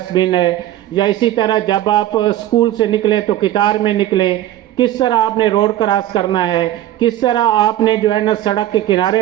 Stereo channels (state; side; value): quieter; left; 13.4 dB